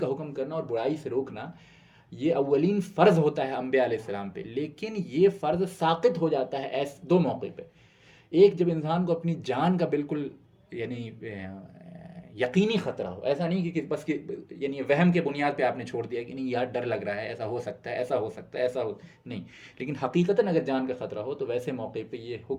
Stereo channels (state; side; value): identical; both; correlation 1.00